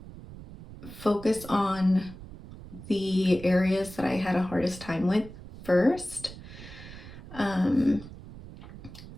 focus on the areas that I had a hardest time with first.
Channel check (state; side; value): noise; right; rumble, 15 dB below the sound